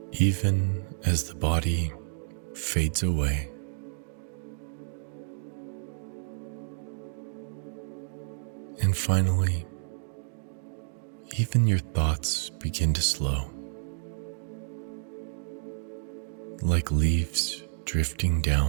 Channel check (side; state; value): left; silent; digital silence